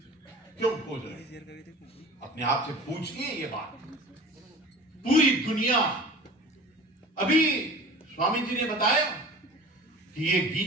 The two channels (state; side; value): normal; both; correlation 0.39